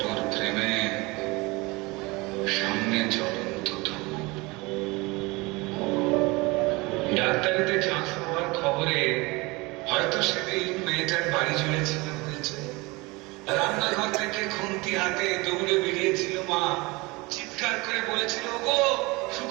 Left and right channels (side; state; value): left; quieter; 24.2 dB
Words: ফ্রেমে সামনে জ্বলন্ত ধূপ। ডাক্তারিতে চান্স পাওয়ার খবরে হয়তো সেদিন মেয়েটার বাড়ি জুড়ে ছিল হয়েছে। রান্নাঘর থেকে খুন্তি হাতে দৌড়ে বেরিয়েছিল মা, চিৎকার করে বলেছিল, ওগো